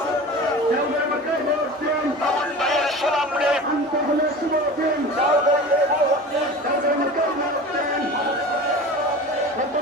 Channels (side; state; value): both; normal; correlation 0.35